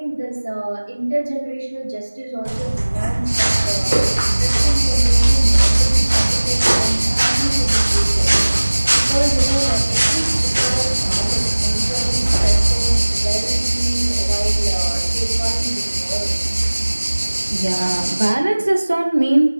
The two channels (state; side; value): inverted; both; correlation -1.00